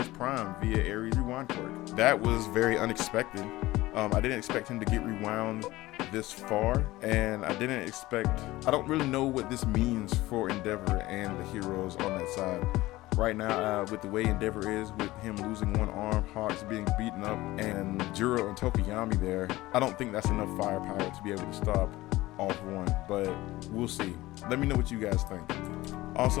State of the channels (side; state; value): right; quieter; 18.2 dB